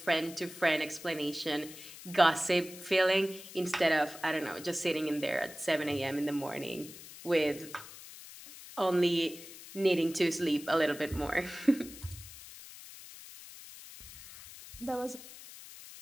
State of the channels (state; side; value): noise; left; hiss, 15 dB below the sound